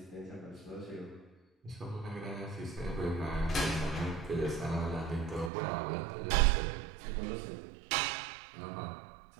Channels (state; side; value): drops out; left; at 5.5 s